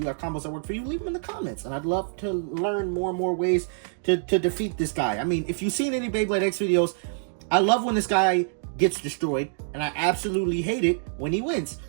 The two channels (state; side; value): silent; left; digital silence